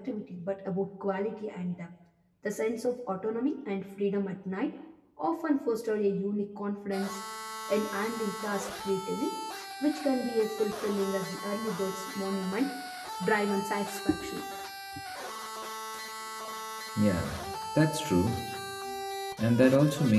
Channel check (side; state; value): both; identical; correlation 1.00